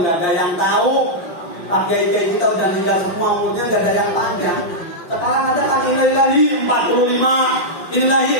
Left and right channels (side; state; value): right; late; 5.2 ms